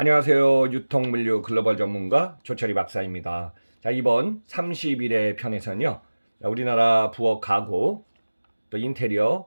유통물류 글로벌 전문가 조철이 박사입니다. 자, 이번 31회 편에서는요. 우리나라 부엌 가구 또 인테리어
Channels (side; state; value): both; inverted; correlation -1.00